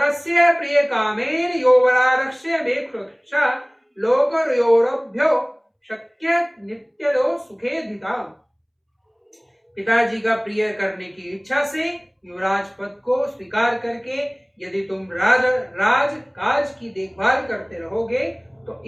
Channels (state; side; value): identical; both; correlation 1.00